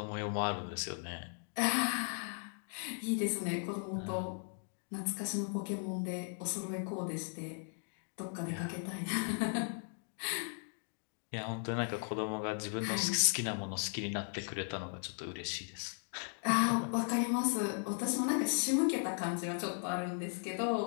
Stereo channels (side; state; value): right; silent; 53 dB below the other